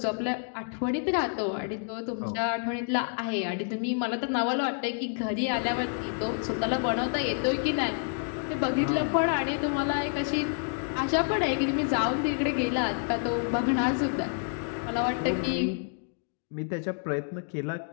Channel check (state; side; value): silent; right; 59 dB below the other